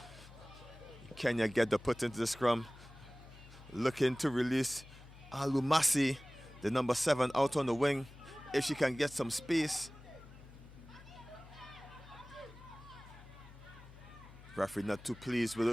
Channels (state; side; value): noise; left; hum, 19 dB below the sound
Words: Kenya get the put into the scrum. Looking to release Alumasi, the number 7, out on the wing, if she can get some space. Referee not too pleased with